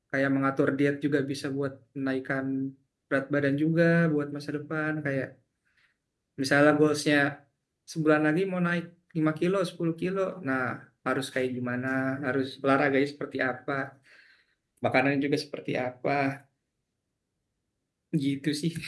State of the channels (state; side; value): identical; both; correlation 1.00